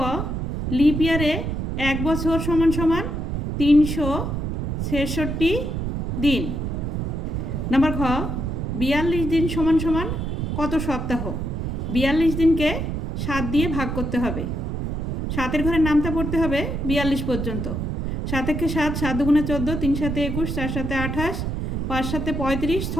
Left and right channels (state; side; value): noise; right; rumble, 2 dB below the sound